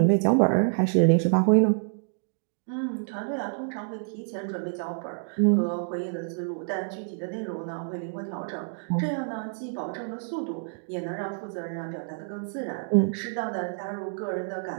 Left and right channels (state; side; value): silent; left; digital silence